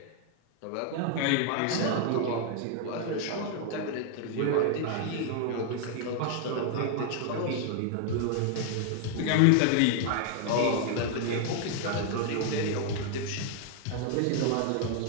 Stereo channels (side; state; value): both; different; correlation 0.00